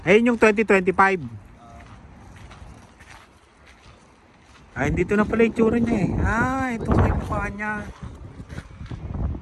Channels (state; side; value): identical; both; correlation 1.00